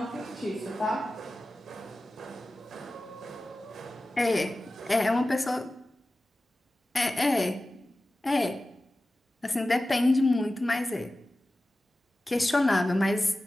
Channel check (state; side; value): normal; both; correlation 0.95